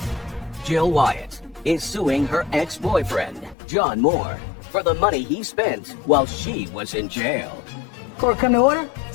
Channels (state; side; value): drops out; right; at 3.6 s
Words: Jill Wyatt is suing her ex-boyfriend, John Moore, for the money he spent while she was in jail. Court come to order.